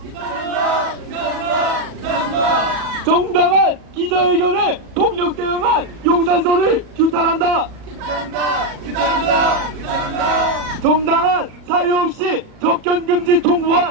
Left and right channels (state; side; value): late; left; 37 ms